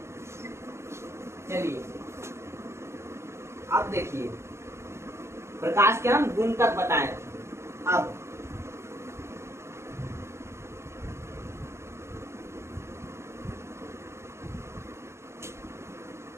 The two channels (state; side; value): late; left; 0.13 ms